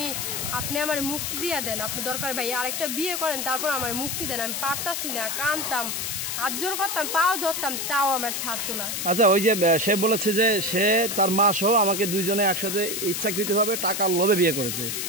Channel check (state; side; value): noise; left; hiss, 2 dB below the sound